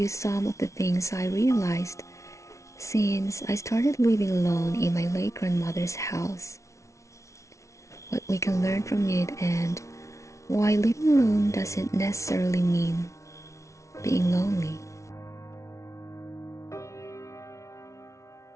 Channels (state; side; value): late; right; 0.14 ms